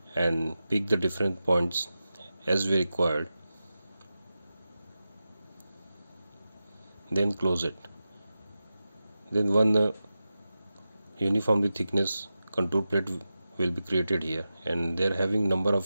and pick the different points as we required, then close it. Then one uniformly thickness contour plate will be created here, and they're having number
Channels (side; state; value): both; inverted; correlation -0.92